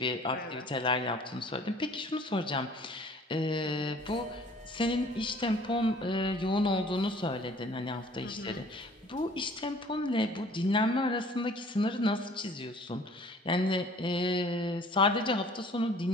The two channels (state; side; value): normal; both; correlation 0.52